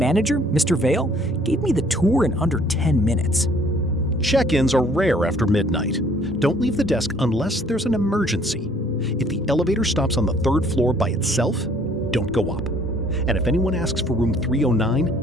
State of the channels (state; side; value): normal; both; correlation 0.59